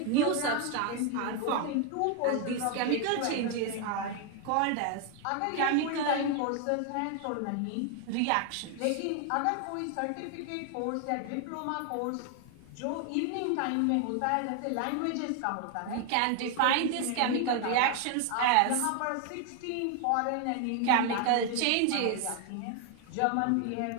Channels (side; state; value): both; different; correlation 0.01